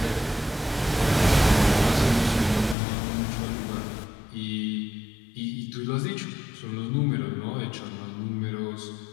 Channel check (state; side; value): drops out; right; at 2.8 s